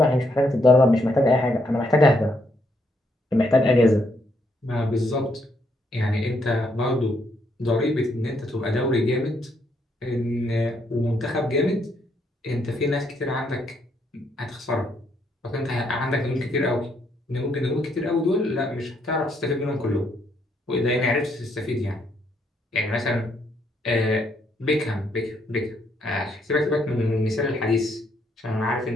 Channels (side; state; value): both; normal; correlation 0.74